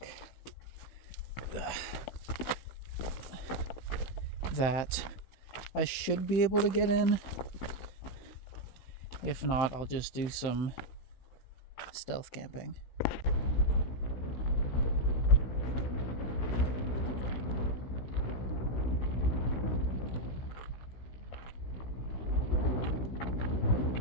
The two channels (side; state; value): right; late; 16 ms